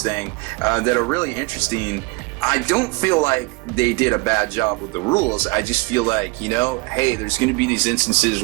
thing that are really interesting. I don't feel like they did a bad job with the rules. I just feel like, hey, there's going to be these instances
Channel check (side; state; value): left; quieter; 26.4 dB